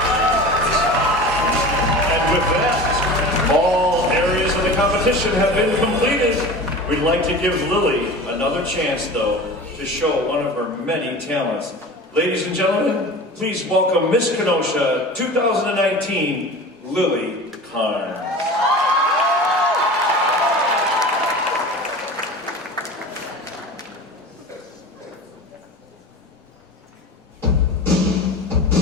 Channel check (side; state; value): both; normal; correlation 0.35